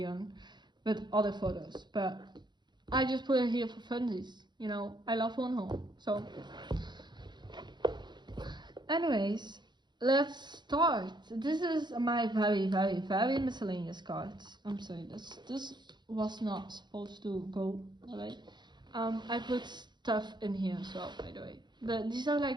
with other photos, but I just put it here for funsies. You know, I love one so. Anyways. Let's start. This is my very miscellaneous cards. I'm sorry, this was not supposed to go away. I put stuff in here as well, by the way. But these are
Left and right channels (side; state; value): left; late; 0.21 ms